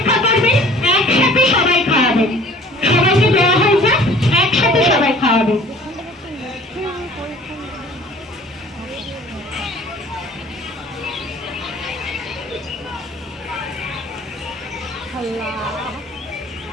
করবেন, একসাথে সবাই খাওয়াবেন। সবাইকে দেওয়া হয়ে যাক, একসাথে সবাই খাওয়াবেন।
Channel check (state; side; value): normal; both; correlation 0.50